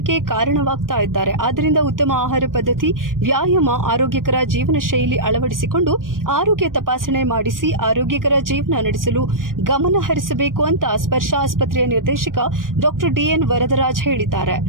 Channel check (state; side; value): late; left; 0.90 ms